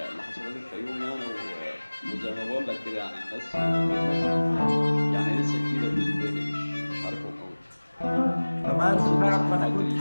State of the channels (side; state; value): both; inverted; correlation -1.00